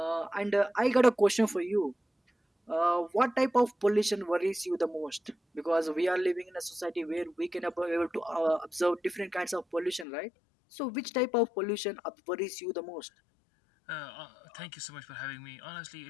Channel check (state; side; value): drops out; right; at 10.1 s